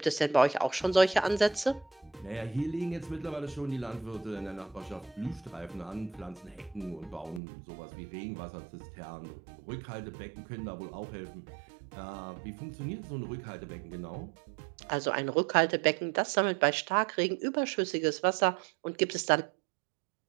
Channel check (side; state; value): left; drops out; at 7.4 s